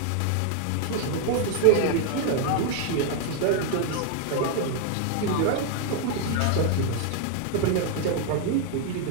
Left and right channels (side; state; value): both; different; correlation 0.00